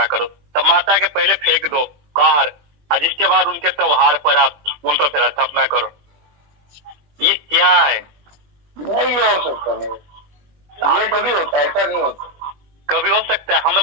करो, तब माता के पहले फेंक दो बाहर, और जिसके बाद उनके त्योहार पर आप उन पर फिर स्थापना करो। ये क्या है? नहीं हो सकता, नहीं ये कभी होता है, ऐसा नहीं होता। कभी हो सकता है, हम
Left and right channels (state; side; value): late; left; 20 ms